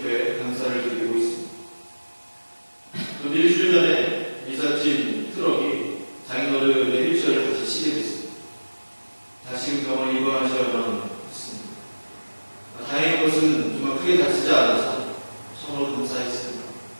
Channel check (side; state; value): both; inverted; correlation -1.00